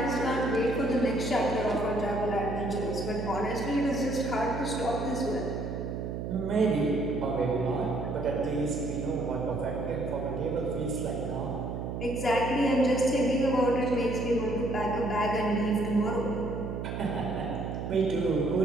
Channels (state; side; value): noise; right; hum, 4 dB below the sound